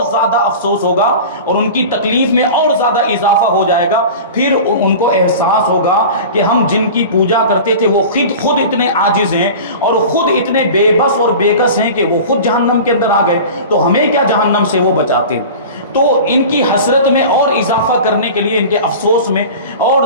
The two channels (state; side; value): inverted; both; correlation -0.35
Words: زیادہ افسوس ہوگا اور ان کی تکلیف میں اور زیادہ اضافہ ہو جائے گا۔ پھر ان کو احساس ہوگا کہ ہم جن کی پوجا کرتے تھے وہ خود اتنے عاجز ہیں اور خود اتنے بے بس اور بے کس ہیں کہ وہ خود جہنم کے اندر آ گئے، تو ہمیں کیا جہنم سے وہ بچاتے ہیں۔ تو ان کی حسرت میں اور اضافہ کرنے کے لیے، ان کے افسوس میں اور